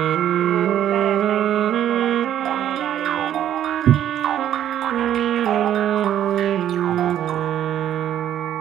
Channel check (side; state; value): left; quieter; 11.0 dB